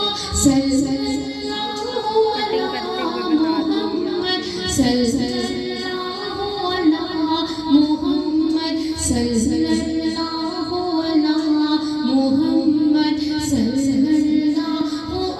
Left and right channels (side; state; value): both; identical; correlation 1.00